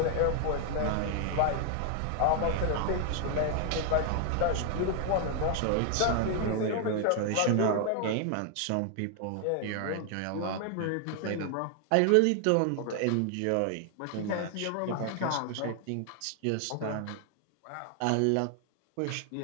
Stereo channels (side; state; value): both; different; correlation 0.00